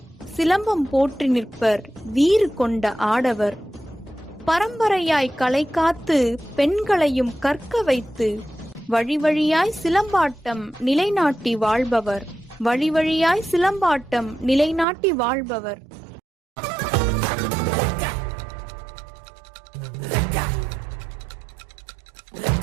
சிலம்பம் போற்றி நிற்பர் வீறு கொண்ட ஆடவர். பரம்பரையாய் கலை காத்து பெண்களையும் கற்க வைத்து வழி வழியாய் சிலம்பாட்டம் நிலைநாட்டி வாழ்பவர். வழி வழியாய் சிலம்பாட்டம் நிலைநாட்டி வாழ்பவர்.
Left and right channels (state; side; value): drops out; left; at 14.9 s